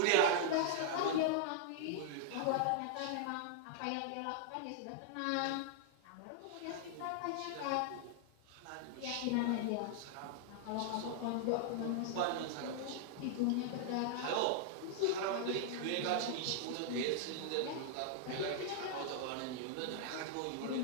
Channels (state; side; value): different; both; correlation -0.01